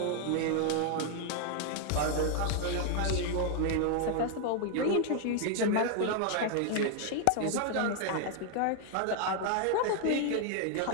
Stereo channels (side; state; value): both; different; correlation 0.00